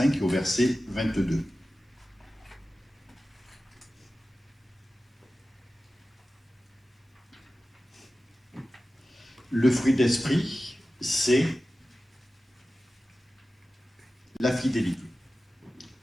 et au verset 22. Le fruit d'esprit, c'est la fidélité.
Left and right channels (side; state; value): both; normal; correlation 0.95